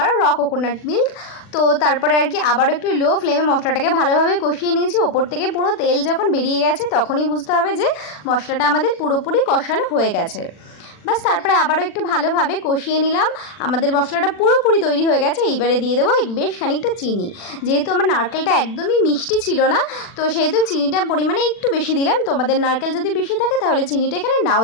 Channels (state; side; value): late; right; 40 ms